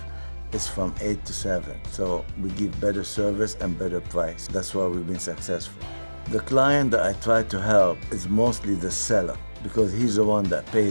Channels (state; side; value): inverted; both; correlation -1.00